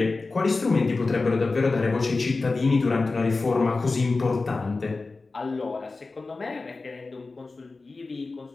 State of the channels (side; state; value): right; quieter; 3.7 dB